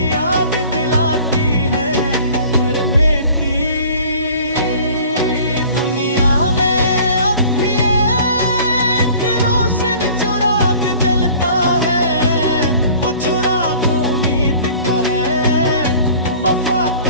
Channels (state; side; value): inverted; both; correlation -0.48